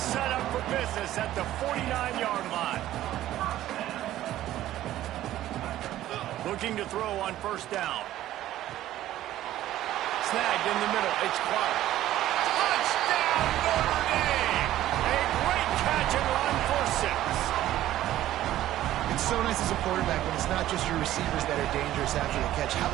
up for business at the 49-yard line. Looking to throw on 1st down. Snagged in the middle, it's Clark. Touchdown, Notre Dame! A great catch and run for 6. It's so nice as a quarterback when it's not just your receivers that are dangerous after the catch. How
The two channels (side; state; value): left; quieter; 13.7 dB